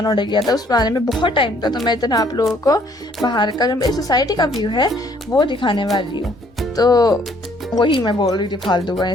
ऑर्डर किया था, उस आने में बहुत टाइम था। तो मैं इतना आप लोगों को बाहर का जो मेरी सोसाइटी का व्यू है वो दिखाने वाली हूँ। तो वही मैं बोल रही थी फालतू का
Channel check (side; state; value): both; normal; correlation 0.63